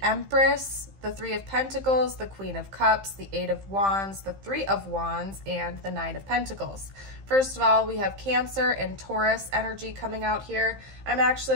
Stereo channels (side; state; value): left; late; 15 ms